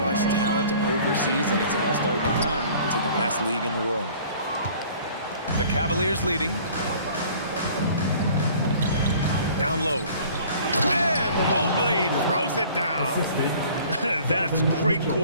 talent overseas, and it's all starting to come to the best league in the world. The Cavaliers leading. Down low. And Mobley throws it down. That's great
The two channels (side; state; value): both; inverted; correlation -0.50